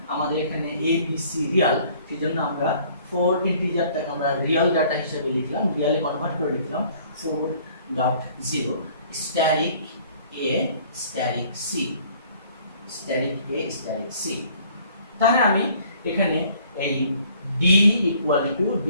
আমাদের এখানে a b c রিয়াল, সেজন্য আমরা 4 ইন্টিজারটাকে আমরা রিয়াল ডাটা হিসেবে লিখলাম, রিয়ালে কনভার্ট করে লিখলাম 4.0 স্ট্যাটিক a স্ট্যাটিক c। তাহলে আমি এখানে এই d equal to b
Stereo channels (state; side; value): inverted; both; correlation -0.56